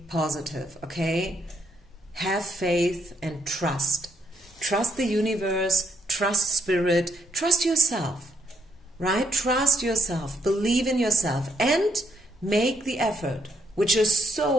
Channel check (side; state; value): both; normal; correlation 0.74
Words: positive, okay? Have faith and trust. Trust the universe, trust spirit, trust yourself, right? Trust yourself, believe in yourself, and make the effort, which is